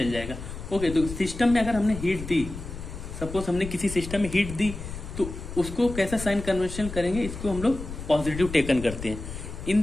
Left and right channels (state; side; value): noise; left; rumble, 9 dB below the sound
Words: जाएगा। ओके, तो सिस्टम में अगर हमने हीट दी, सपोज हमने किसी सिस्टम में हीट दी, तो उसको कैसा साइन कन्वेंशन करेंगे, इसको हम लोग पॉजिटिव टेकन करते हैं। इन